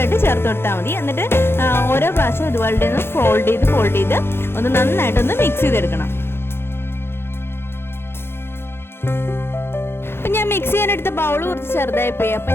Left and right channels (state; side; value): late; right; 0.11 ms